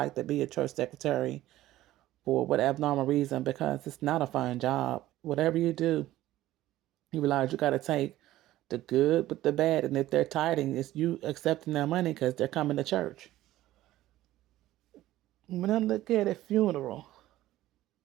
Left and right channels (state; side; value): quieter; left; 15.1 dB